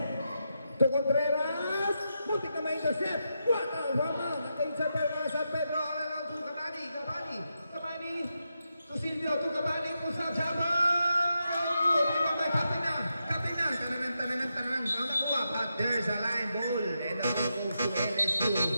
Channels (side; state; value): both; inverted; correlation -0.85